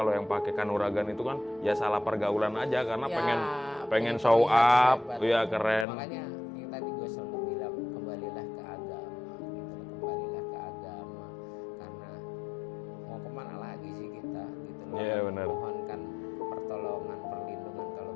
yang pakai kanuragan itu kan ya salah pergaulan aja karena ya, pengen show terlihat up, hebat. ya keren. Makanya yang tadi gue selalu bilang, kembalilah ke agama gitu loh, kembalilah ke agama, karena mau kemana lagi sih kita gitu loh. Iya, benar. Mohonkan pertolongan, perlindungan kalau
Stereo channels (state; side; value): drops out; right; at 5.9 s